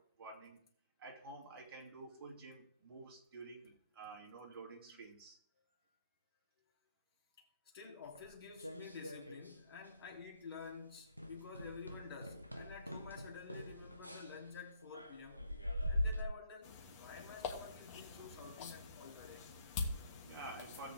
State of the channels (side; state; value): both; inverted; correlation -0.70